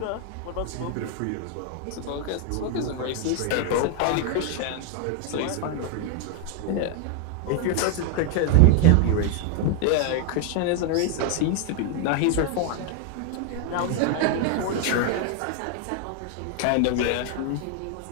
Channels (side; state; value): both; different; correlation 0.00